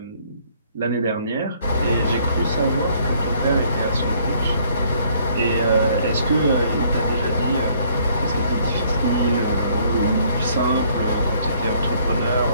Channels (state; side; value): inverted; both; correlation -0.63